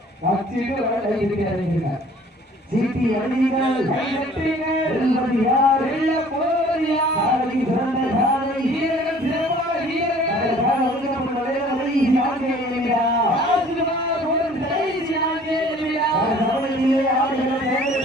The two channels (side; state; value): both; normal; correlation 0.52